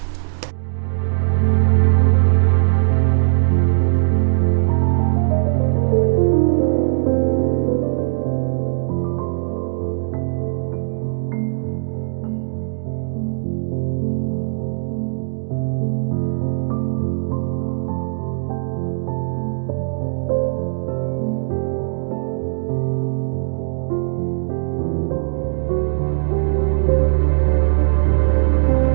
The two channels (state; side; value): silent; left; digital silence